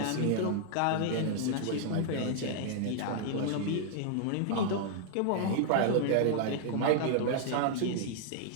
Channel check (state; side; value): different; both; correlation -0.01